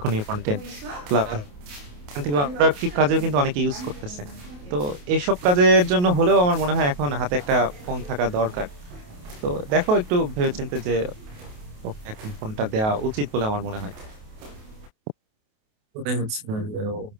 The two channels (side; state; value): left; late; 28 ms